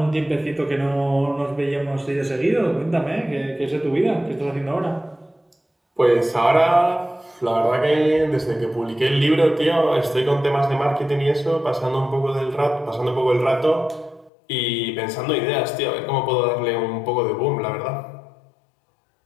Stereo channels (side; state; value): right; drops out; at 14.3 s